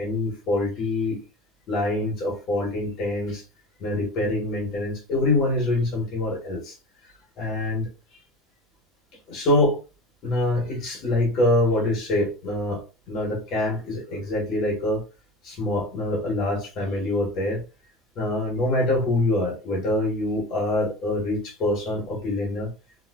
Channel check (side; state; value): both; normal; correlation 0.33